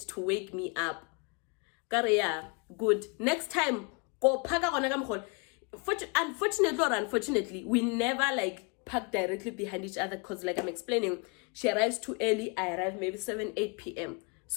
wake me up. Yeah, good. Next time, go park on. Unfortunately or unfortunately, we never park directly behind each other because I'm explaining, she arrives too early, I arrive maybe 7, 8 p.m.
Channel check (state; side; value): quieter; right; 32.9 dB